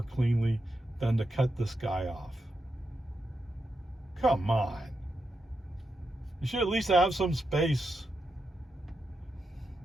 cleanly than to cut this guy off. Come on. You should at least have some space.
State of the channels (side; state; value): both; normal; correlation 0.86